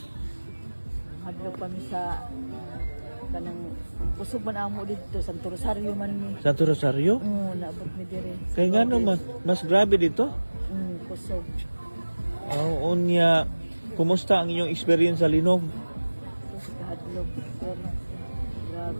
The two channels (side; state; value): both; inverted; correlation -1.00